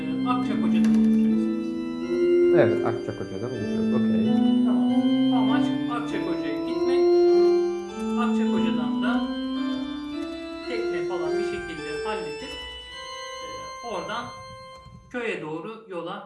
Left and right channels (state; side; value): identical; both; correlation 1.00